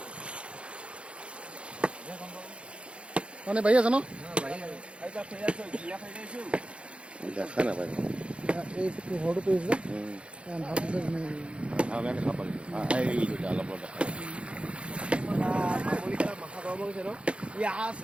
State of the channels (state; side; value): late; left; 0.059 ms